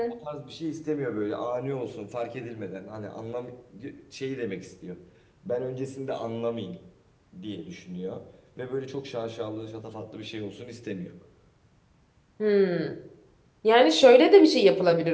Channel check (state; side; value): identical; both; correlation 1.00